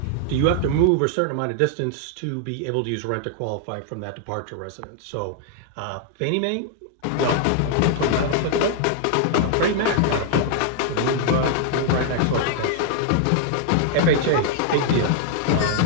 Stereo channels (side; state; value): both; different; correlation 0.00